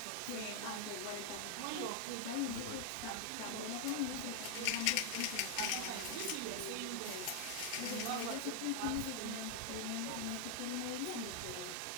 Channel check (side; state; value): both; different; correlation 0.00